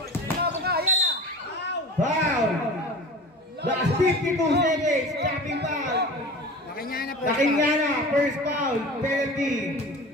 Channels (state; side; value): normal; both; correlation 0.36